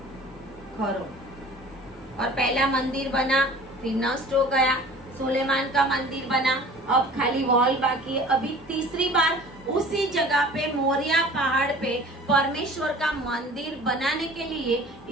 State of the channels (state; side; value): normal; both; correlation 0.45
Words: करो, और पहला मंदिर बना, फिर नष्ट हो गया, सुलेमान का मंदिर बना, अब खाली वॉल बाकी है। अभी तीसरी बार उसी जगह पे मोरिया पहाड़ पे परमेश्वर का मंदिर बनाने के लिए